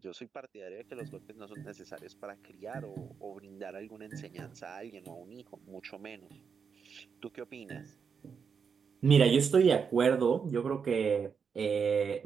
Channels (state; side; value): quieter; left; 6.3 dB